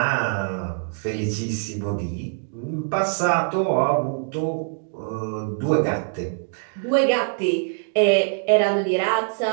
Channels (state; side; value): silent; left; 63 dB below the other